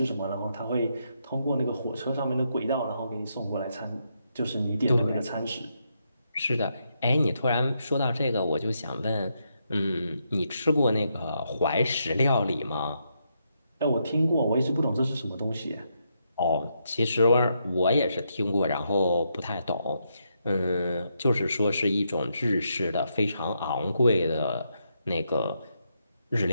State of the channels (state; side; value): inverted; both; correlation -0.80